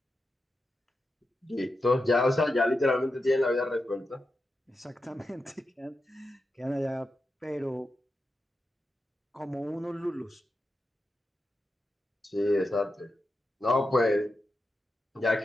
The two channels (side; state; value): both; normal; correlation 0.89